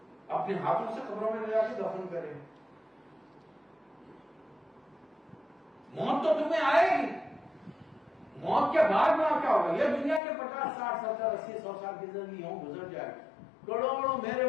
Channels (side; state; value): right; drops out; at 10.2 s